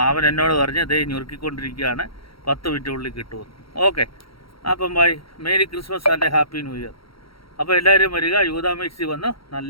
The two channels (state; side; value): late; right; 0.75 ms